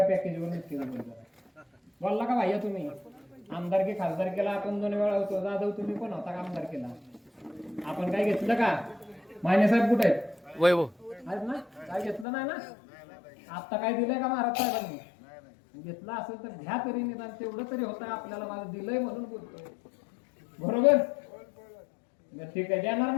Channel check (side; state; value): right; drops out; at 12.2 s